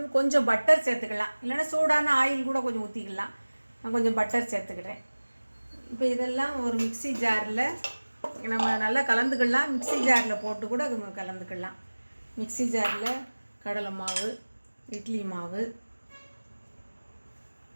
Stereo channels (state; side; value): inverted; both; correlation -1.00